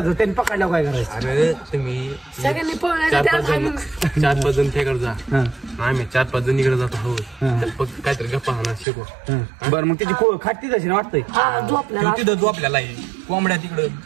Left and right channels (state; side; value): drops out; left; at 8.8 s